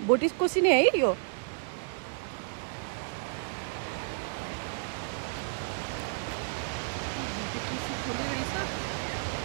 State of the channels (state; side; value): silent; left; digital silence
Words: भोटेकोसी नै है यो भोटेकोसी खोले रहेछ